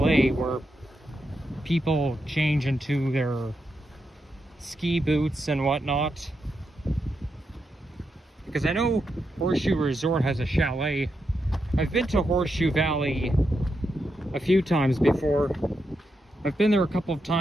where people change into their ski boots and whatnot. Because I know Horseshoe Resort has a chalet. I've been to Horseshoe Valley a few times before. I've been there a couple of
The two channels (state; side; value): normal; both; correlation 0.84